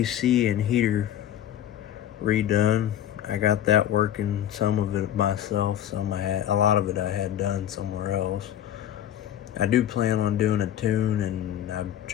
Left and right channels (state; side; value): quieter; right; 11.2 dB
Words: and heater redone. I got that working, some of it myself, a lot of it I had done somewhere else. I do plan on doing a tune, and I've